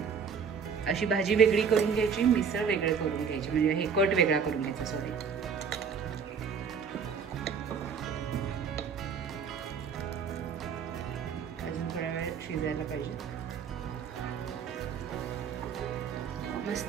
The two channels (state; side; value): quieter; left; 6.4 dB